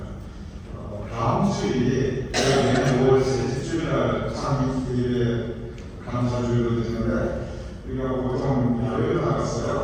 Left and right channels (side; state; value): both; identical; correlation 1.00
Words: 다음 주일이 5월 셋째 주일날 상임교회 감사주일로 되는데 우리가 보통 야외로